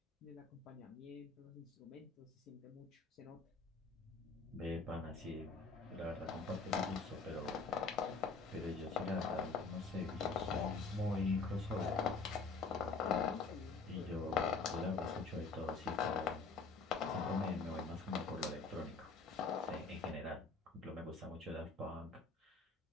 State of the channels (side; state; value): right; quieter; 4.4 dB